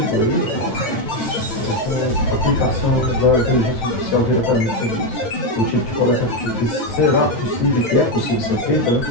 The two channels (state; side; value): late; right; 9.1 ms